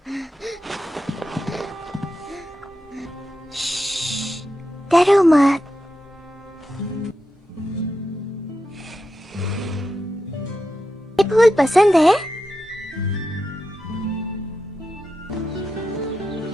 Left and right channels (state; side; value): normal; both; correlation 0.88